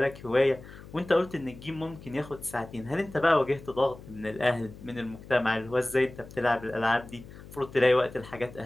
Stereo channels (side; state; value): left; noise; hum, 17 dB below the sound